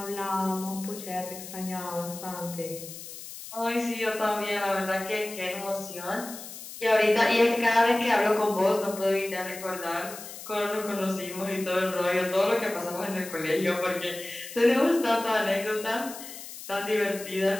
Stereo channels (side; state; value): left; noise; hiss, 12 dB below the sound